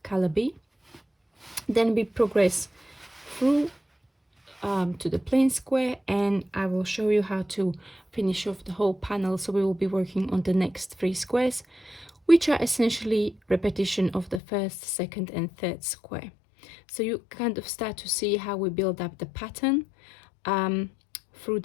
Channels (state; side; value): drops out; right; at 14.4 s